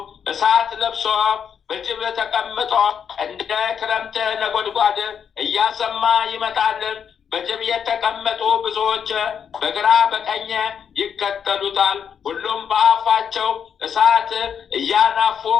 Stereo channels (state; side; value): quieter; right; 7.6 dB